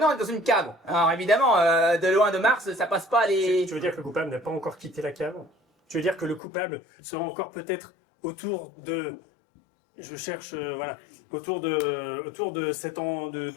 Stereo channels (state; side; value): drops out; right; at 6.4 s